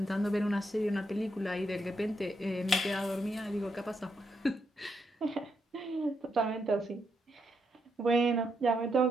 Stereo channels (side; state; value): both; normal; correlation 0.80